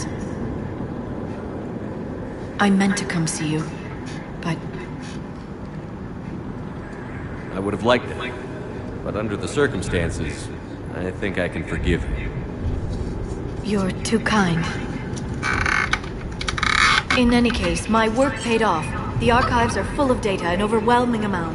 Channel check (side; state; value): both; identical; correlation 1.00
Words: I meant to come see you, but... I would have liked it. But under the circumstances, I think I can forgive you. You're too kind. In any case, my work paid off. The archives are full of data, an overwhelming